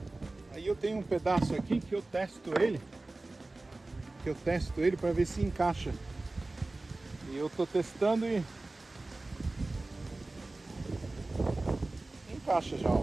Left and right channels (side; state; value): left; quieter; 3.1 dB